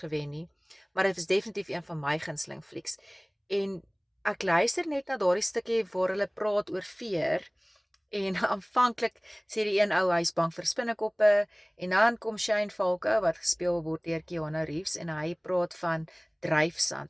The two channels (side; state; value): both; identical; correlation 1.00